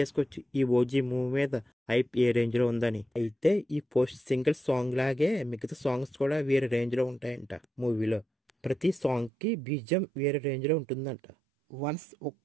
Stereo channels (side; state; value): left; drops out; at 9.3 s